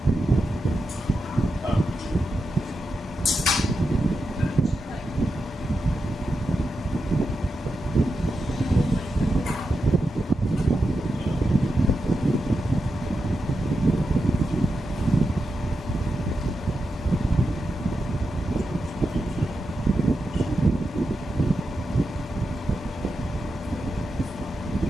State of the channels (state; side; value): normal; both; correlation 0.88